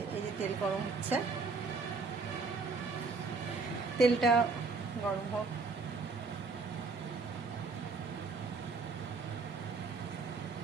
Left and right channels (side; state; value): left; quieter; 4.2 dB